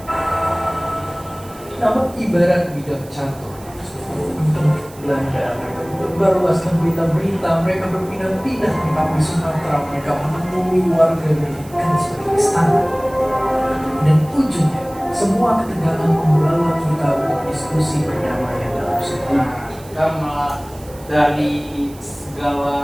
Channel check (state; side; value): noise; right; hiss, 22 dB below the sound